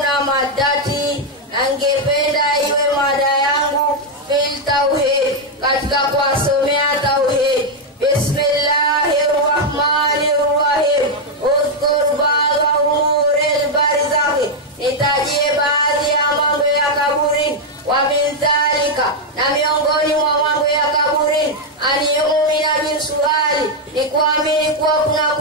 madati. Nangependa iwe mada yangu fil tauhid. Katika kuwasomea tauhid. Bismillahirrahmanirrahim. Udhkur ba'da umuril barzakhi. Nitajie baadhi ya mambo ya kaburi. Wa min dhalika. Na miongoni mwa mambo ya kaburi. Aniumina bin suali. Ni kuamini kuwa kuna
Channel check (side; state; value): both; normal; correlation 0.00